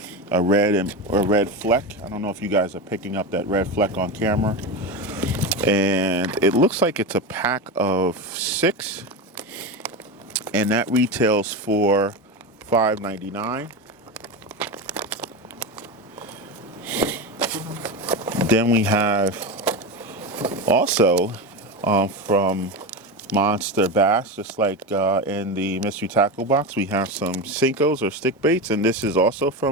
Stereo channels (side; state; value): both; normal; correlation 0.19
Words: red fleck. I don't know if you guys are picking up that red fleck on camera. And it looks like it's a pack of 6, and that retails for $5.99. Then we have also from MonsterBass, just like in the mystery tackle box, we have some Sinkos or stick baits, and this is also